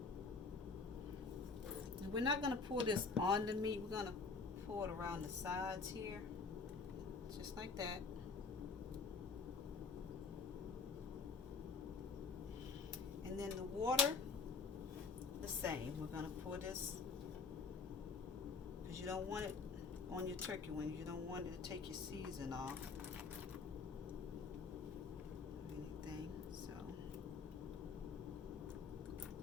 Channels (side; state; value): right; quieter; 4.7 dB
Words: And we're not going to pour this on the meat. We're going to pour it around the sides here, just like that. And then the water, the same. We're going to pour this, because you don't want it on your turkey wings. You don't want it to take your season off or anything. So